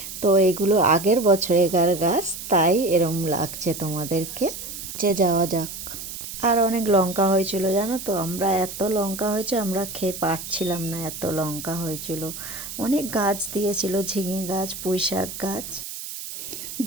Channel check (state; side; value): noise; right; hiss, 9 dB below the sound